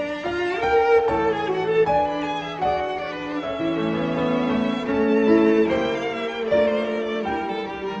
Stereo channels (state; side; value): identical; both; correlation 1.00